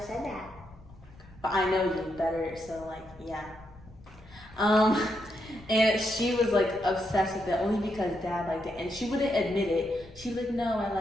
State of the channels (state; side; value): noise; left; rumble, 22 dB below the sound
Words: that. But I know you better, so like, yeah. And she was like obsessed with it only because Dad liked it, and she wouldn't admit it. She was like, no, I